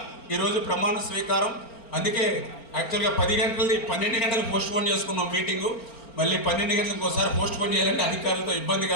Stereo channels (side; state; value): right; late; 4.4 ms